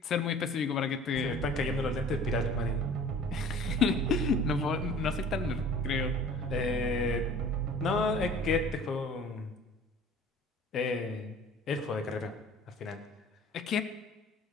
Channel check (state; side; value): normal; both; correlation 0.46